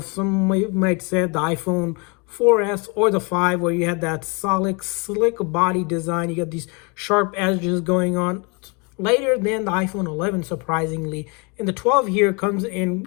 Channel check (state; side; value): quieter; right; 31.6 dB